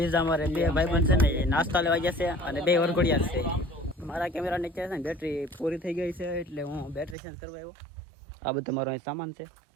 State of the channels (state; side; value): drops out; left; at 7.2 s